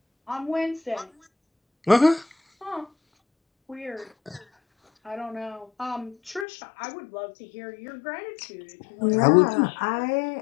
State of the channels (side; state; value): right; drops out; at 6.5 s